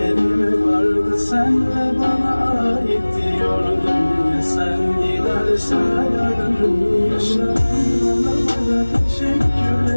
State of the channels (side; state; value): both; inverted; correlation -1.00